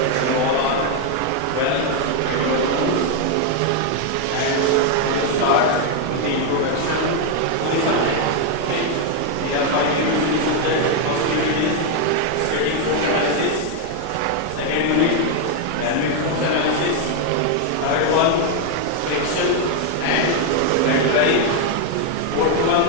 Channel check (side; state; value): both; different; correlation 0.01